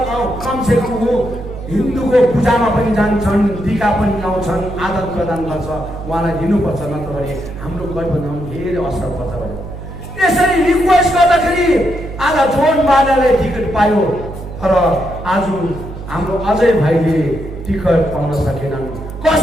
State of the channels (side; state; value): right; noise; hum, 11 dB below the sound